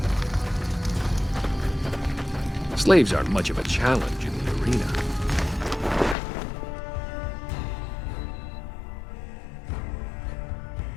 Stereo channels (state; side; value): drops out; right; at 6.2 s